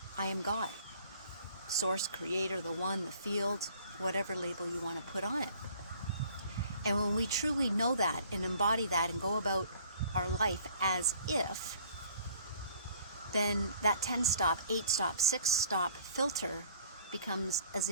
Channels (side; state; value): both; inverted; correlation -0.55